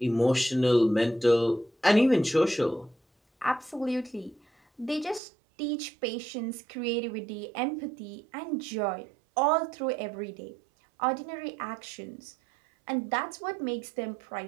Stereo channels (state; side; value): drops out; left; at 5.2 s